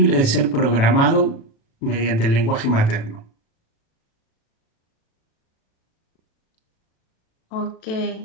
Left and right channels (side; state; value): right; late; 36 ms